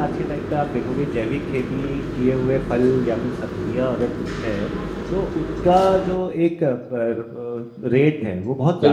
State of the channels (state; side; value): identical; both; correlation 1.00